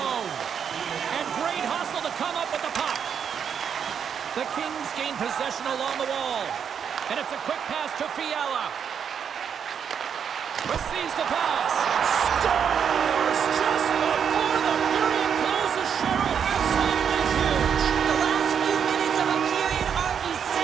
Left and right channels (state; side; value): quieter; left; 7.6 dB